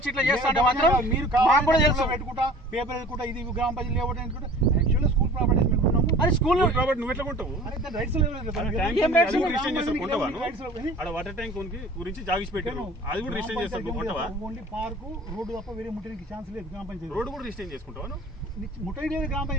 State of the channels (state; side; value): normal; both; correlation 0.45